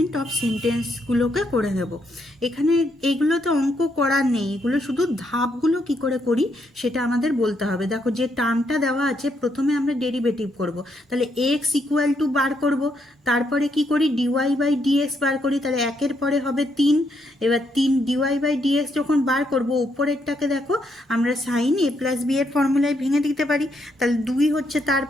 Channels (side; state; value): both; normal; correlation 0.76